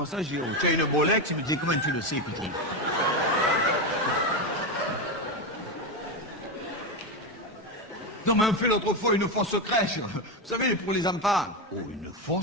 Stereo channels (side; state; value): both; normal; correlation 0.12